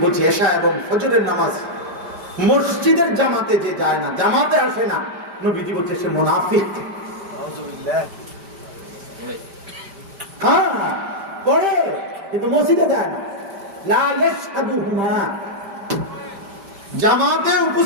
বলছে এশা এবং ফজরের নামাজ মসজিদের জামাতে যে যায় না, জামাতে আসে না, নবীজি বলছে সে মুনাফিক। হ্যাঁ পড়ে কিন্তু মসজিদে যায় না। লা ইয়াশহাদুহুমা, জামাতে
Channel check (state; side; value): late; left; 5.1 ms